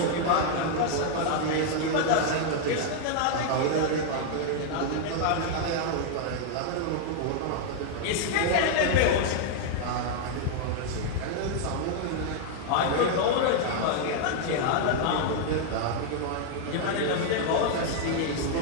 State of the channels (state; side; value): different; both; correlation 0.00